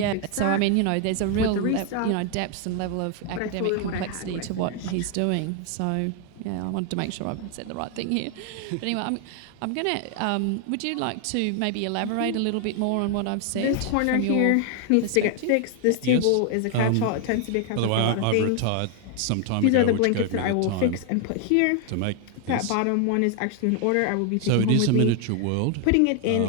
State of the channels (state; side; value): different; both; correlation 0.00